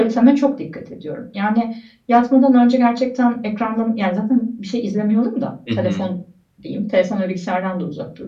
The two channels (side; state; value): both; identical; correlation 1.00